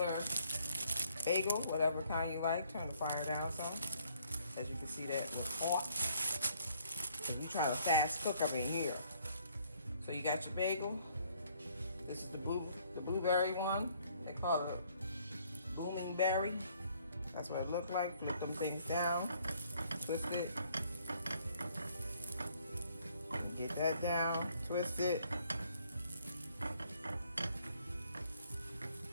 Bagel, whatever kind you like. Turn the fire down some. As you can see, that was hot. Because we trying to fast cook up in here. So you got your bagel. This is the blueberry one. They call it booming berry. That's what it looked like. Flip them things down. Twist it. And get that down. Twist it.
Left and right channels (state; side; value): inverted; both; correlation -0.64